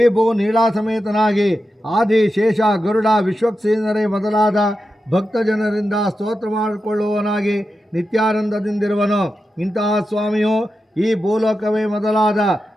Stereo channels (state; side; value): normal; both; correlation 0.90